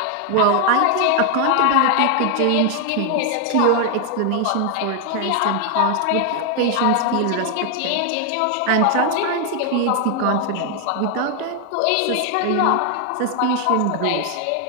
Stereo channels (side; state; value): both; different; correlation 0.00